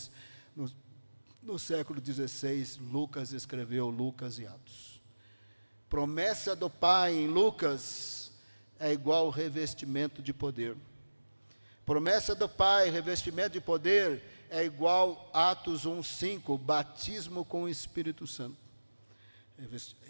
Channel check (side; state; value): both; inverted; correlation -1.00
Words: no século XVI, Lucas escreveu Lucas e Atos. Promessa do Pai em Lucas é igual revestimento de poder. Promessa do Pai, revestimento de poder, é igual Atos 1:5, batismo com o Espírito Santo.